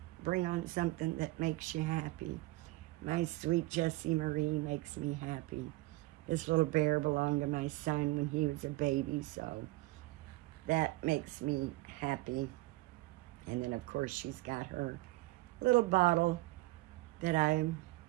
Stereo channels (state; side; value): quieter; left; 20.1 dB